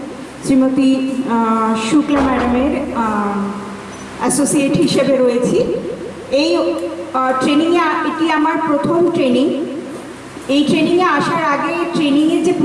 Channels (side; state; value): both; identical; correlation 1.00